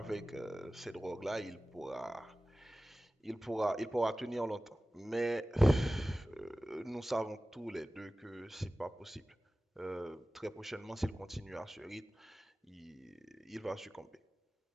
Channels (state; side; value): normal; both; correlation 0.96